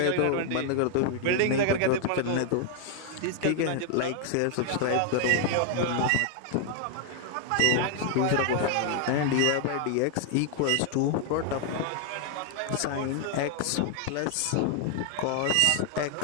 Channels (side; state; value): both; different; correlation 0.00